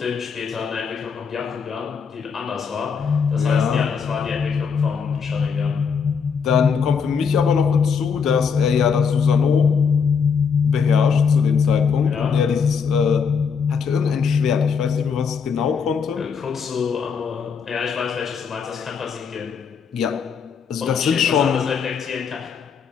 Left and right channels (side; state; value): right; quieter; 6.2 dB